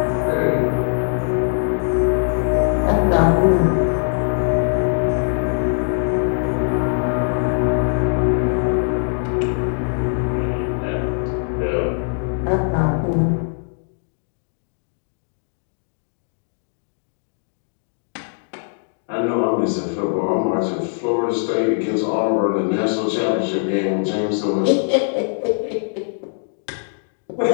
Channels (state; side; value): silent; right; digital silence